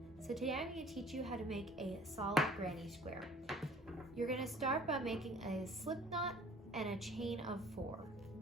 So today I'm going to teach you how to make a solid granny square. You're going to start by making a slip knot and a chain of 4.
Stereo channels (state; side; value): normal; both; correlation 0.51